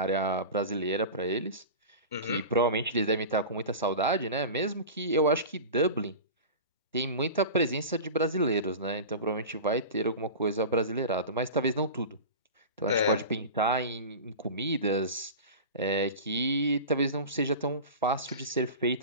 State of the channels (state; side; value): inverted; both; correlation -0.31